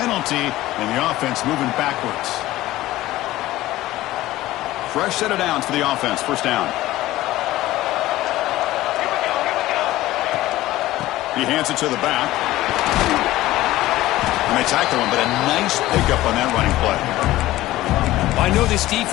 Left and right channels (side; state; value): right; quieter; 16.3 dB